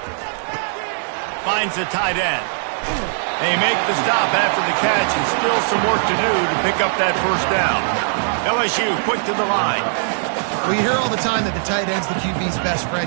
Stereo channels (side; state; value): left; silent; digital silence